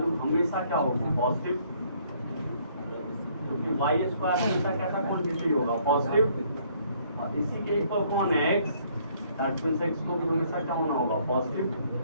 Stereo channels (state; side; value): inverted; both; correlation -0.64